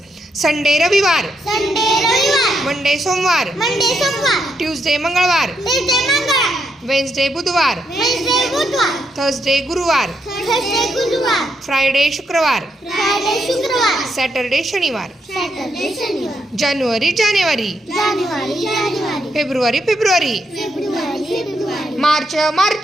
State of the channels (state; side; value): normal; both; correlation 0.79